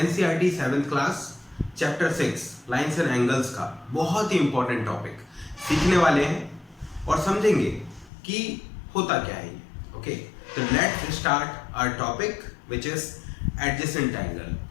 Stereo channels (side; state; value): right; drops out; at 8.1 s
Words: 7th class chapter 6 lines and angles का बहुत ही इम्पोर्टेंट टॉपिक सीखने वाले हैं और समझेंगे कि होता क्या है। ओके, तो let's start our topic which is adjacent angle,